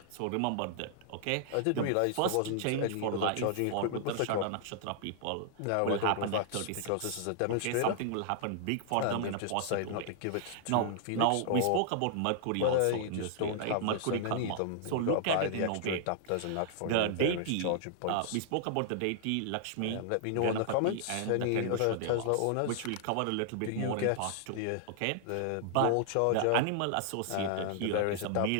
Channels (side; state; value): both; different; correlation -0.01